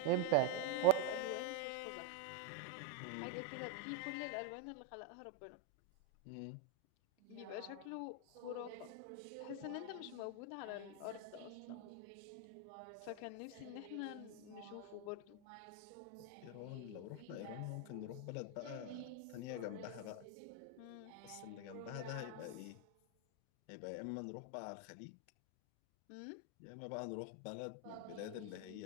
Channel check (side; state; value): both; different; correlation 0.01